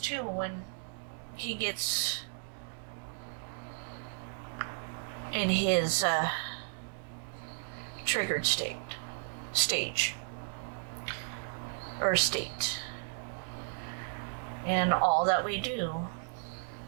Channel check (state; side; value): silent; left; digital silence